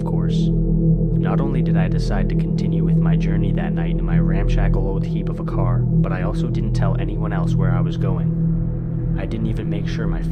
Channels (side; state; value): both; identical; correlation 1.00